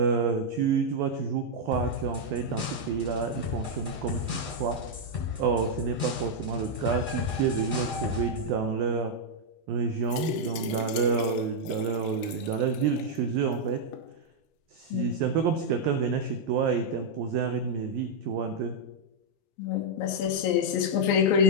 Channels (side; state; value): both; normal; correlation -0.04